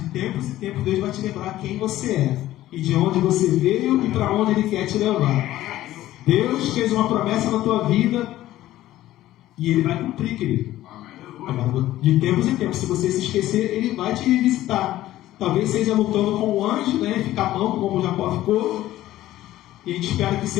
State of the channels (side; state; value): right; quieter; 14.6 dB